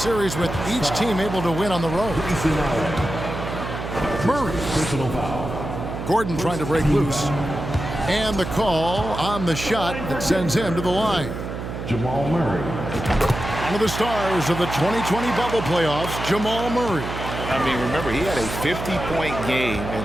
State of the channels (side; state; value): right; noise; hum, 7 dB below the sound